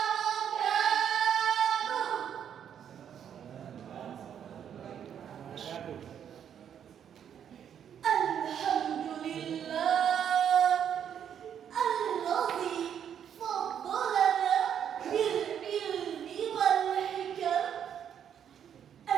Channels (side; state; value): left; quieter; 8.8 dB